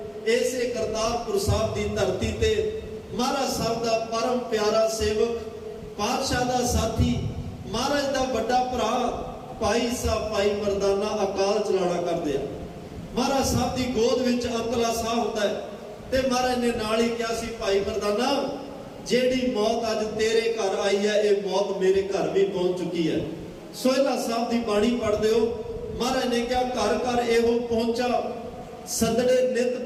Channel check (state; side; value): identical; both; correlation 1.00